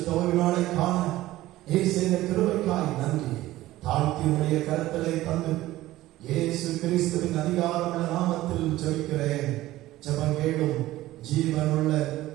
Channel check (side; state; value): left; quieter; 16.1 dB